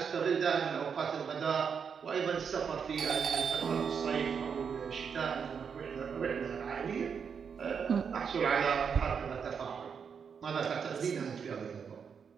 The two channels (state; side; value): quieter; left; 6.6 dB